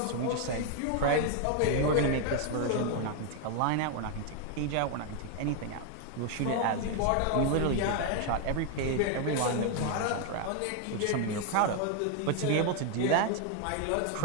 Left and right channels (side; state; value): both; different; correlation 0.01